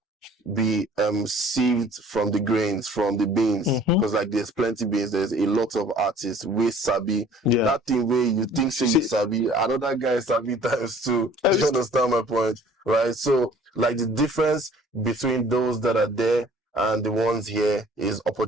be sieved from the grains, from the beans. Because like there's plenty beans, there's a lot of artists with sabi. That thing where you think say you sabi, another guy sabi times two. Do you understand my point? Right? So like the difference between those that are there and the ones here is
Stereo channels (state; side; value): normal; both; correlation 0.52